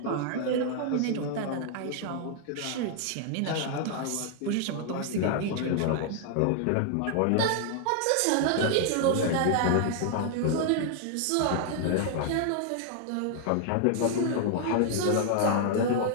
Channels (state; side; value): different; both; correlation 0.00